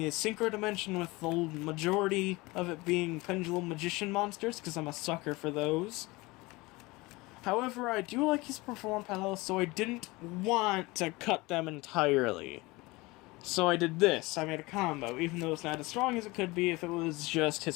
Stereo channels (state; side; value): quieter; right; 22.6 dB